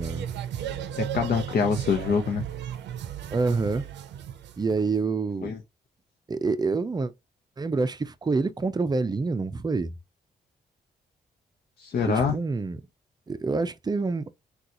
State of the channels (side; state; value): both; normal; correlation 0.70